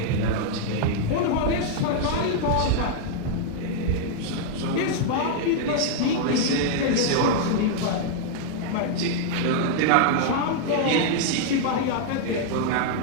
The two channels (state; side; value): different; both; correlation -0.01